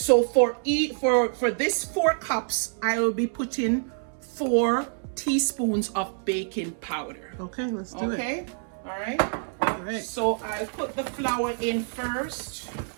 for this 4 cups, I will be putting 4 teaspoons of baking powder. Okay, let's do it. Okay, all right. All right. So I'll put the flour in first.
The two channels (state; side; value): silent; left; 60 dB below the other